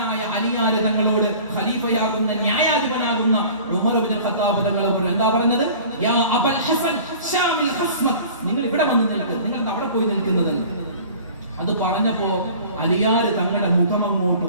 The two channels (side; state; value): both; inverted; correlation -0.45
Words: അലിയാർ തങ്ങളോട് ഖലീഫയാകുന്ന ന്യായാധിപനാകുന്ന ഉമർ ഇബ്നു ഖത്താബ് തങ്ങൾ എന്താ പറഞ്ഞത്? യാ അബൽ ഹസൻ ഷാമിൽ ഖസ്മക്, നിങ്ങൾ ഇവിടെ വന്ന് നിൽക്ക്, നിങ്ങൾ അവിടെ പോയി നിൽക്കുന്നതെന്ന്. അത് പറഞ്ഞപ്പോ അലിയാർ തങ്ങളുടെ മുഖം അങ്ങോട്ട്